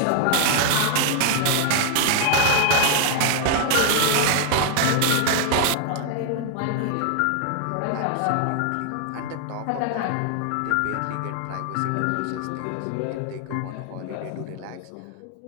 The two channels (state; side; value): different; both; correlation 0.00